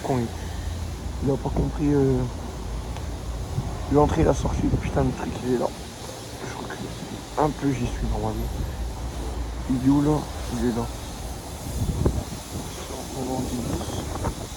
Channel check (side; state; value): both; identical; correlation 1.00